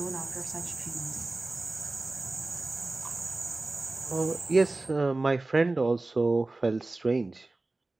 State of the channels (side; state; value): left; quieter; 3.1 dB